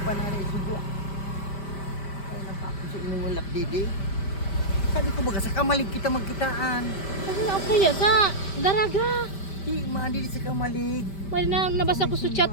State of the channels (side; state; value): right; late; 5.1 ms